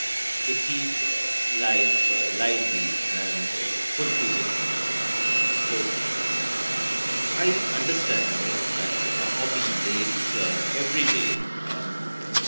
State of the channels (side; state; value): both; inverted; correlation -1.00